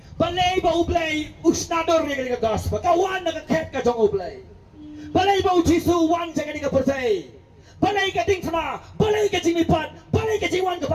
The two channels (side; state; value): both; identical; correlation 1.00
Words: Balay ba ublay usnador yang kani ka gospel. Kawan na kaket ka jong ublay. Balay ba ujisu wan yang kani ka persay. Balay ka ding sama, balay ka jimipan, balay ka jiwan ka